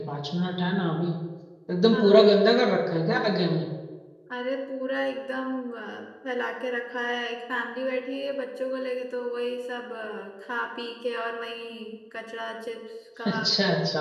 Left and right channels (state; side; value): identical; both; correlation 1.00